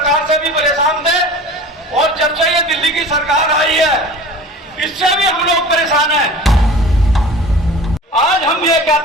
से भी परेशान थे और जब से ये दिल्ली की सरकार आई है इससे भी हम लोग परेशान हैं। आज हम ये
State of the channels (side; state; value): both; normal; correlation 0.39